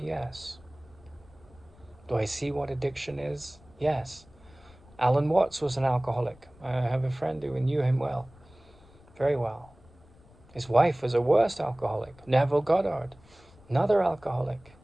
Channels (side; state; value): left; noise; rumble, 26 dB below the sound